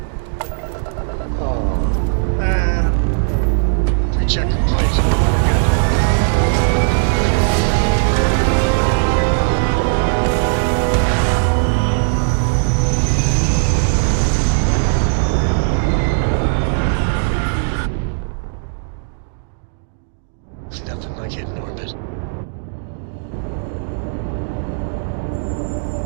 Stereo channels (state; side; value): silent; left; digital silence